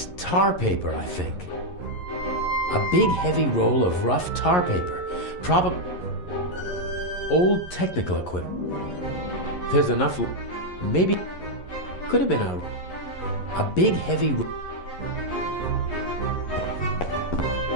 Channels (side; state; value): right; late; 11 ms